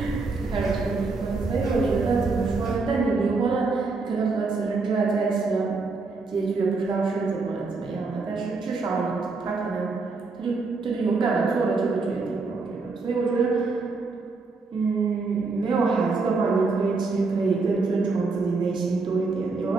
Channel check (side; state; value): left; quieter; 4.0 dB